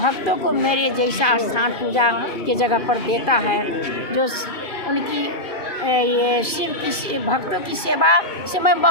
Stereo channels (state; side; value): late; right; 2.3 ms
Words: को मेरे जैसा स्थान पूजा के जगह पर देता है, जो उनकी ये शिव की भक्तों की सेवा से मैं